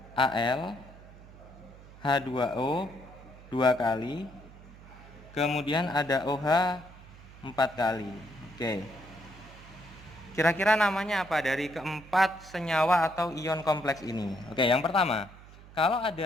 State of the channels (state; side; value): noise; right; hum, 20 dB below the sound